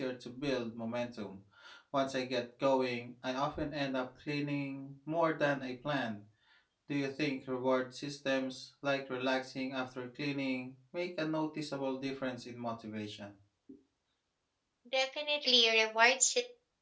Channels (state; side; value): identical; both; correlation 1.00